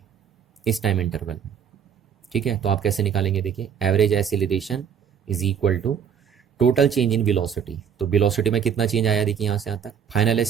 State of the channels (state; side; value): quieter; left; 7.9 dB